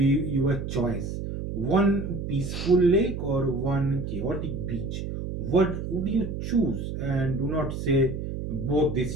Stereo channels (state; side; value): noise; right; hum, 5 dB below the sound